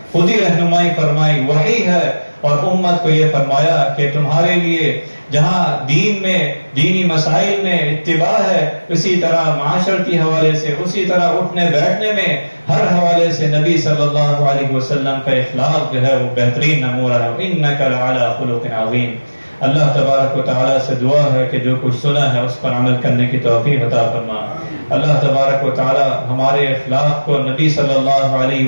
خود ہی رہنمائی فرمائی، وحی ہے، اور امت کو یہ فرمایا کہ تمہارے لیے جہاں دین میں، دینی مسائل میں اتباع ہے، اسی طرح معاشرتی حوالے سے، اسی طرح اٹھنے بیٹھنے میں، ہر حوالے سے نبی صلی اللہ علیہ وسلم کا اخلاق جو ہے وہ بہترین نمونہ ہے۔ انک لعلی خلق عظیم۔ اللہ تبارک و تعالیٰ سے دعا ہے کہ جو کچھ سنا ہے اس پر عمل کرنے کی توفیق عطا فرما۔ اللہ تبارک و تعالیٰ ہمارے اخلاق کو نبی صلی اللہ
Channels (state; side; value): inverted; both; correlation -1.00